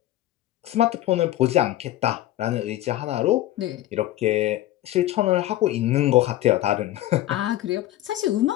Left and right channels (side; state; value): right; quieter; 14.7 dB